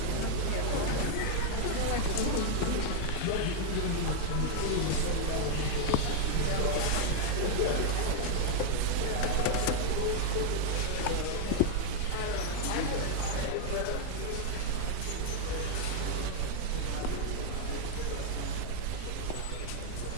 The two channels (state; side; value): different; both; correlation 0.00